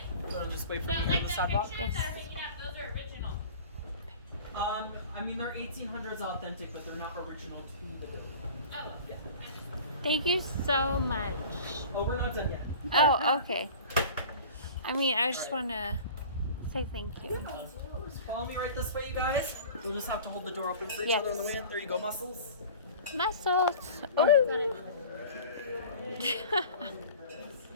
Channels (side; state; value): both; inverted; correlation -0.41